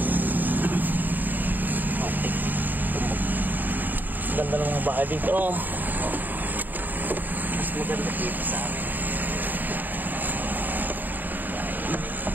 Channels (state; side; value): late; left; 0.088 ms